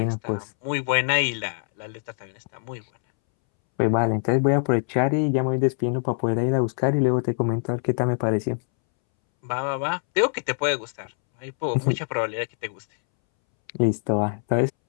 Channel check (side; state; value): right; silent; 62 dB below the other